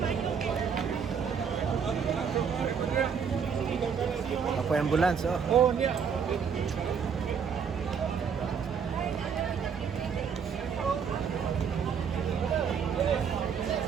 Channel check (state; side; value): quieter; left; 6.8 dB